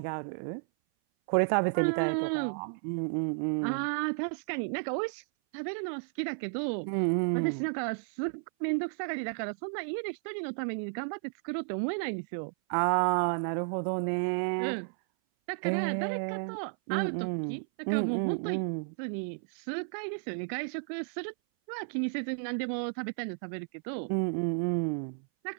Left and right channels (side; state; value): left; silent; 56 dB below the other